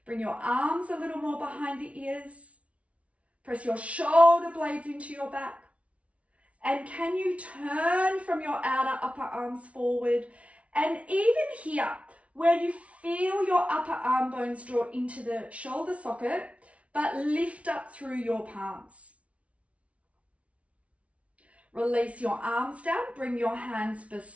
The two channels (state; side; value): late; left; 0.064 ms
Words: Bring your arms a little more behind the ears. Press your shoulder blades into your back. And can you turn from your outer upper arms forward? And even here, where you feel your upper arm bones draw into the shoulder socket, but lift up through your palms. Release your arms down, bring your hands